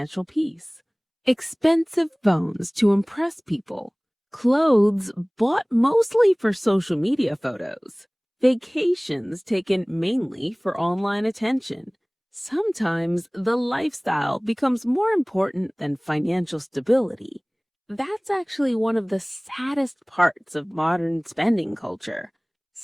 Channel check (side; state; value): both; identical; correlation 1.00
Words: peace. Expensive phones to impress people, clothes bought mostly for social media photos, vacations taken mainly for online attention. Sometimes the lifestyle becomes more important than financial stability. That's actually one of the saddest parts of modern spending culture.